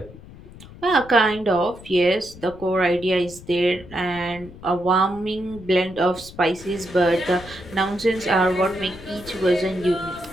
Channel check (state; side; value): noise; left; rumble, 18 dB below the sound